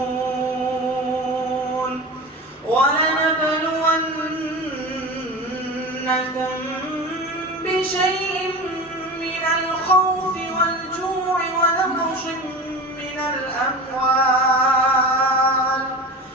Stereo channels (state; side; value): normal; both; correlation 0.31